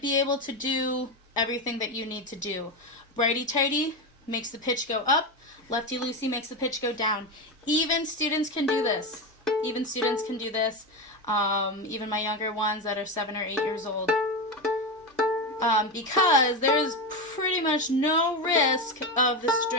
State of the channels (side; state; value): both; normal; correlation 0.15